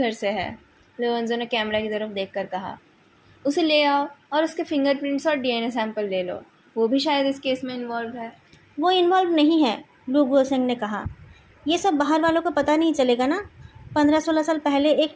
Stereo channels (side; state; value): both; identical; correlation 1.00